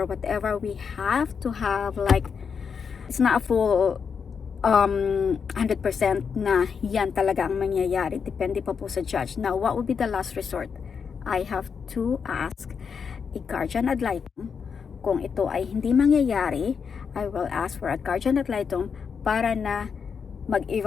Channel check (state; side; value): quieter; right; 6.3 dB